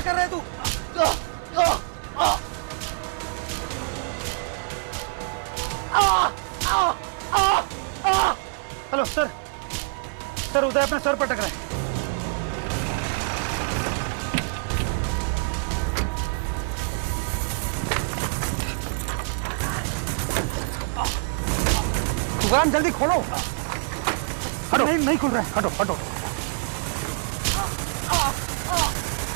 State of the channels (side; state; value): left; silent; 56 dB below the other